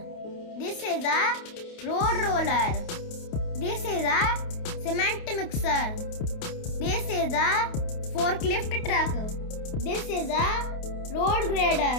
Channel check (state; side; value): late; right; 28 ms